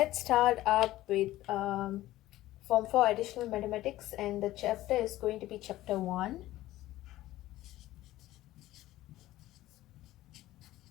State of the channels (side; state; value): right; quieter; 15.7 dB